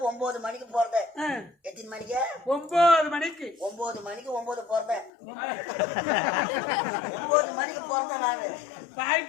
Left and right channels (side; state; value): right; drops out; at 5.1 s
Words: 9 மணிக்கு பிறந்தேன் எத்தனை மணிக்கு 9 மணிக்கு 9 மணிக்கு 9 பிறந்தேன் 9 மணிக்கு பிறந்தேன் நானு